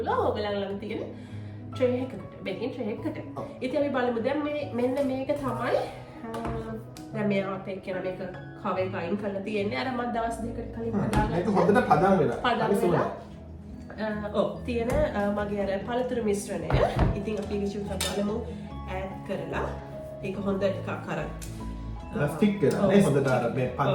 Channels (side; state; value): both; identical; correlation 1.00